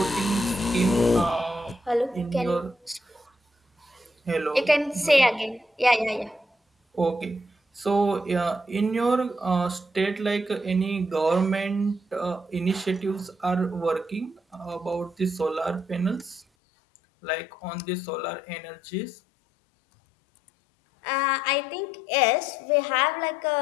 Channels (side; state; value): right; drops out; at 16.4 s